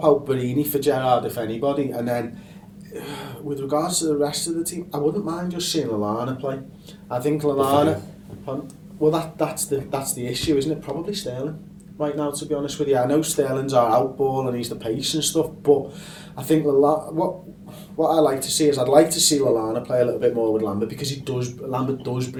out Barini for Gerrard if anybody, and then with regards to the rest of the team, I wouldn't mind just seeing Lallana play. I think Lallana. Well, that's the issue, isn't it? Probably Sterling right now, to be honest with you. I know Sterling's our outball and he's the pace and stuff, but I think what I like to see is I'd like to see Lallana play a little bit more with Lambert, because Lambert does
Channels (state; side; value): identical; both; correlation 1.00